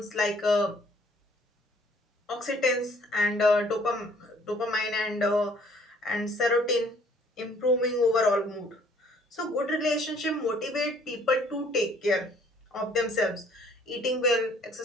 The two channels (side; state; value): both; normal; correlation 0.59